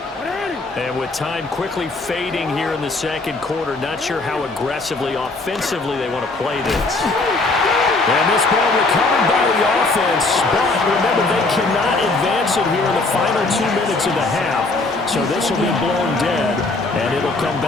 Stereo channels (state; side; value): quieter; right; 3.3 dB